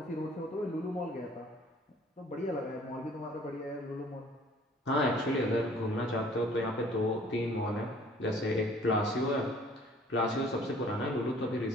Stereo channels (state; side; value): normal; both; correlation 0.54